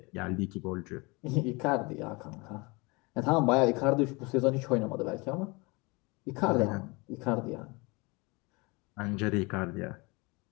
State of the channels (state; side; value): quieter; right; 26.7 dB